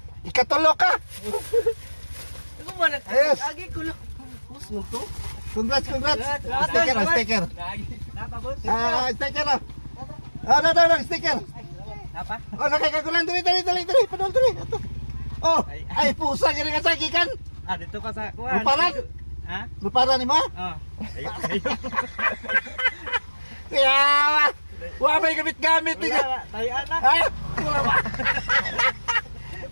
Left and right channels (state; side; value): inverted; both; correlation -1.00